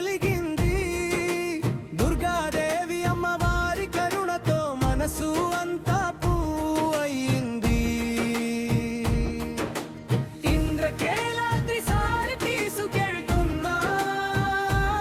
దుర్గాదేవి అమ్మవారి కరుణతో మనసు అంతా పూయింది. ఇంద్రకేలాద్రి సారి తీసుకెళ్తున్నా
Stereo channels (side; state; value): both; identical; correlation 1.00